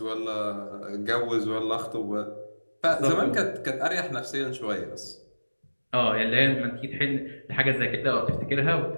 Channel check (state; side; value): inverted; both; correlation -1.00